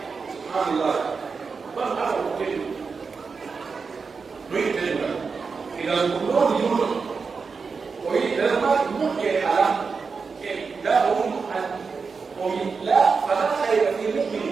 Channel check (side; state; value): left; quieter; 5.0 dB